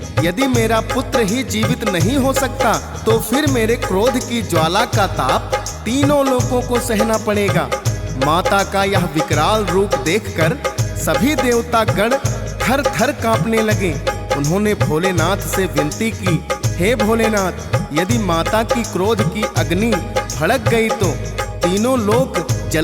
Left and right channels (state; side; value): identical; both; correlation 1.00